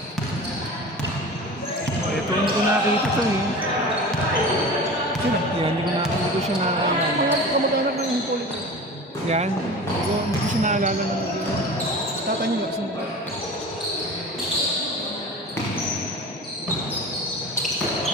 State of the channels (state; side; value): normal; both; correlation 0.35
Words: Ito, hindi ko nakakita ito eh. sino? Yan, hindi ko siya naalala. Mga kamag-anak ng Hippolyte. Yan, hindi ko siya naalala na mag-iwan. Tata niyo, sino ba?